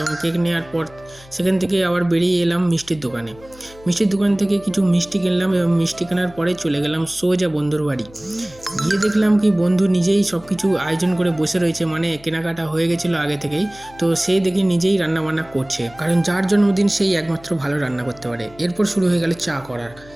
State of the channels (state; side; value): noise; left; hum, 23 dB below the sound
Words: কেক নেওয়ার পর সেখান থেকে আবার বেরিয়ে এলাম মিষ্টির দোকানে। মিষ্টির দোকান থেকে কিছু মিষ্টি কিনলাম, এবং মিষ্টি কেনার পরে চলে গেলাম সোজা বন্ধুর বাড়ি। গিয়ে দেখলাম কি বন্ধু নিজেই সব কিছু আয়োজন করে বসে রয়েছে, মানে কেনাকাটা হয়ে গেছিলো আগে থেকেই। তো সে দেখি নিজেই রান্না বান্না করছে, কারণ যার জন্মদিন সেই একমাত্র ভালো রান্না করতে পারে। এরপর শুরু হয়ে গেল চা করার,